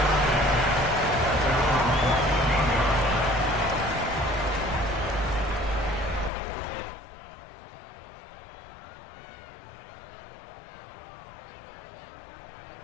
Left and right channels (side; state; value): right; drops out; at 6.3 s